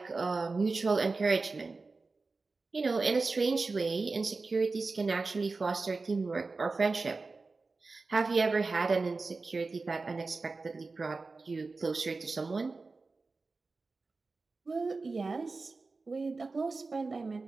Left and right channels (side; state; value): left; quieter; 3.9 dB